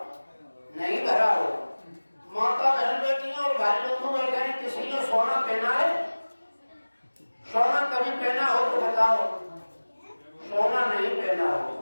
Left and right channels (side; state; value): both; inverted; correlation -1.00